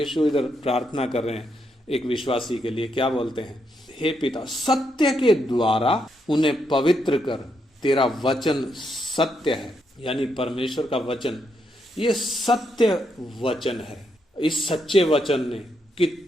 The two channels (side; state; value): both; normal; correlation 0.79